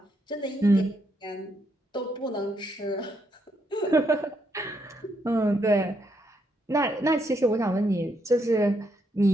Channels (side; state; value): both; normal; correlation 0.76